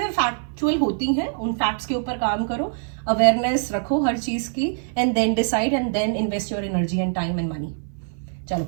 फैक्चुअल होती हैं, उन फैक्ट्स के ऊपर काम करो, अवेयरनेस रखो हर चीज की, and then decide, and then invest your energy and time and money. चलो,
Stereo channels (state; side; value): silent; left; 57 dB below the other